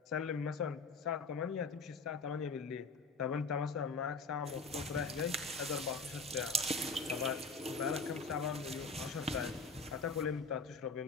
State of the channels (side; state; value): right; quieter; 3.8 dB